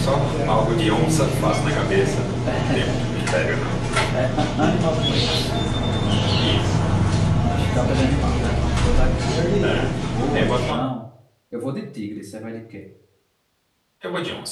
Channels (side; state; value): both; identical; correlation 1.00